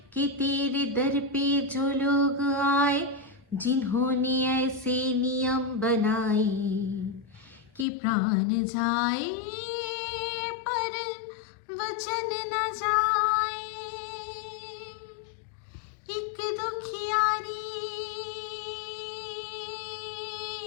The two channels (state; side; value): drops out; right; at 7.9 s